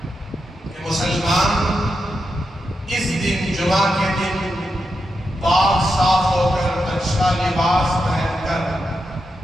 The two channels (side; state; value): both; normal; correlation 0.86